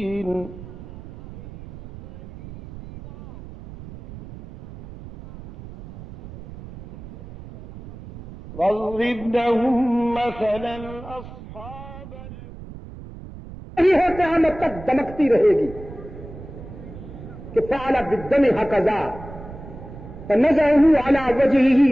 واضرب لهم مثلا أصحاب یہ ہے قیامت تک دمکتی رہے گی، کہ فعل بالدم هكذا فنزعه على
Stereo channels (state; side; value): noise; right; rumble, 15 dB below the sound